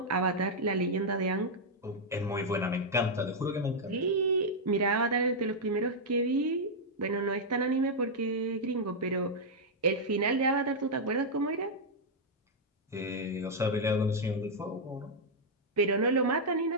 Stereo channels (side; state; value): both; normal; correlation -0.04